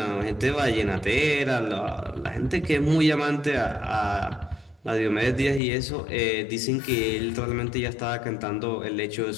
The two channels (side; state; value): right; drops out; at 5.6 s